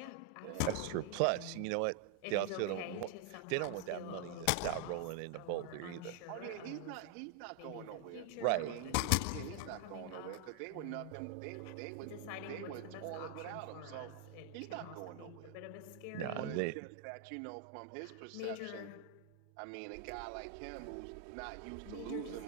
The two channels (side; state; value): both; different; correlation 0.00